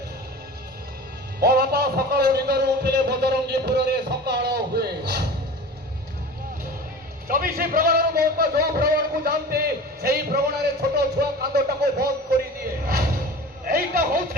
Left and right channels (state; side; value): normal; both; correlation 0.36